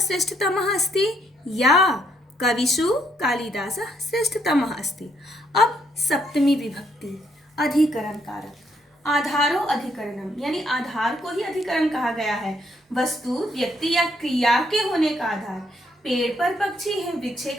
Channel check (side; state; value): both; normal; correlation 0.72